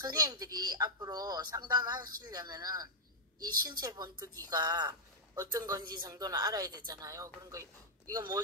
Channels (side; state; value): both; normal; correlation -0.06